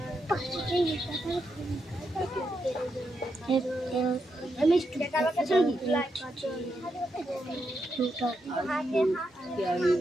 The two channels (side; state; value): both; normal; correlation 0.83